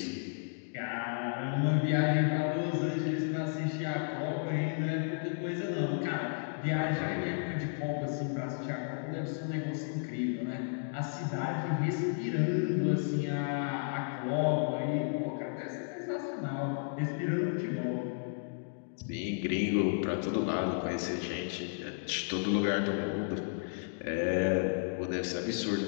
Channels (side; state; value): right; silent; digital silence